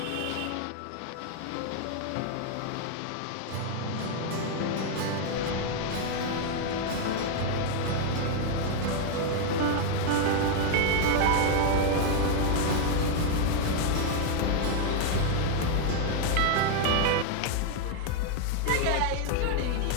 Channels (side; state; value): both; different; correlation 0.00